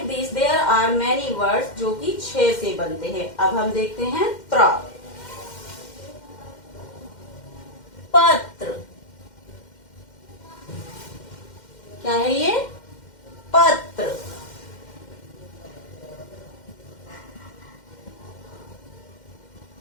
this there are many words जो कि छह से बनते हैं। अब हम देखते हैं त्र। पत्र। क्या है ये? पत्र।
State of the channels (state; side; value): late; right; 2.1 ms